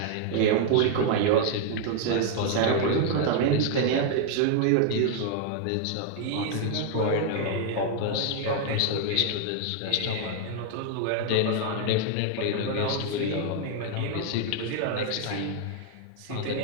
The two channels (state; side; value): different; both; correlation 0.00